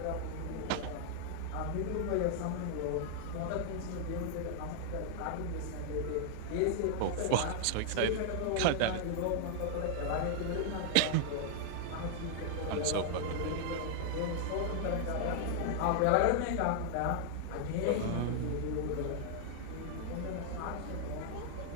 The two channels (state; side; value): different; both; correlation 0.00